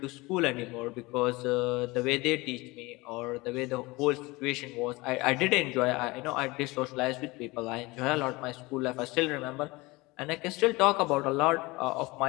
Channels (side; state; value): right; quieter; 22.8 dB